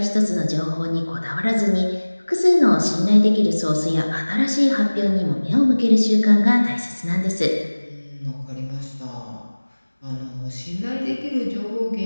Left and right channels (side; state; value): both; inverted; correlation -1.00